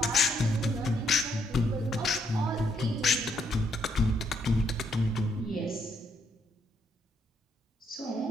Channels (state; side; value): normal; both; correlation 0.73